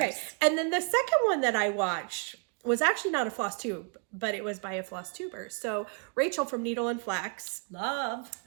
And then the second one that I watched was actually not a floss tube, but it was by a floss tuber. So Rachel from Needle and Flax. Love.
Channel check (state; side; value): quieter; left; 39.0 dB